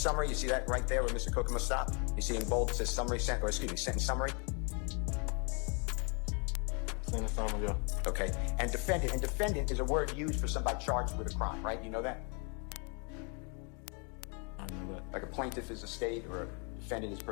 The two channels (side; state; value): right; quieter; 36.0 dB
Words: You see that right there where Mr. Kokomo stopped? You see in bold it says sentence summary. Sentence summary, yeah. Okay, and defendant is a word used for somebody charged with a crime, right? You know that? I know that. Like a plaintiff is a state or a defendant is a